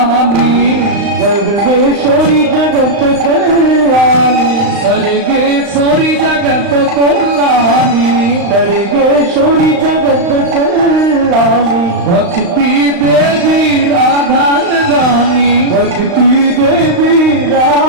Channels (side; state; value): left; late; 35 ms